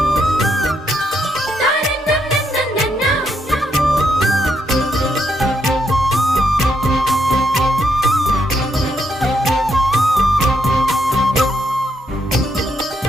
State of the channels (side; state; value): both; normal; correlation 0.77